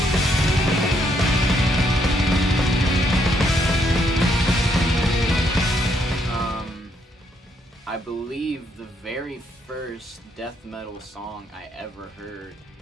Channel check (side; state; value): both; normal; correlation 0.73